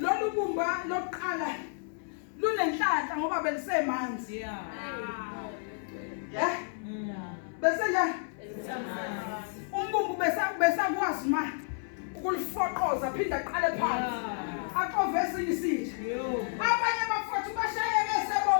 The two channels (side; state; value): right; silent; 56 dB below the other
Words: bumba lokuqala lunenhlanhla ngoba belisemanzi bese njani umbumbu besakwazi ma ukulifoqoza phinda aqale phansi aqove esinye isitsha abanye abafowethu bashayeke